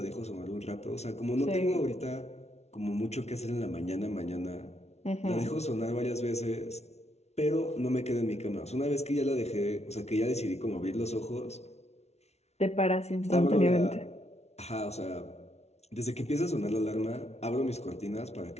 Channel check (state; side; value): late; right; 0.31 ms